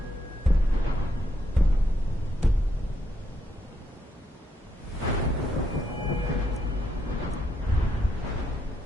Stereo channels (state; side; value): normal; both; correlation 0.78